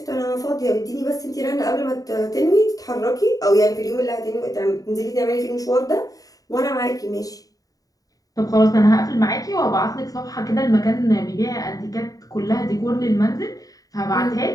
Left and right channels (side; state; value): right; late; 0.17 ms